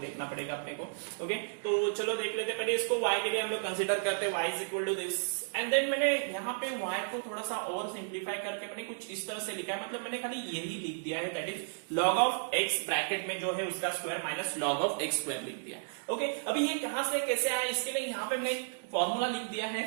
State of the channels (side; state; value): left; silent; digital silence